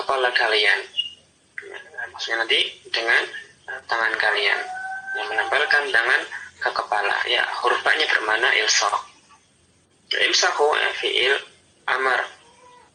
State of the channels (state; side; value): identical; both; correlation 1.00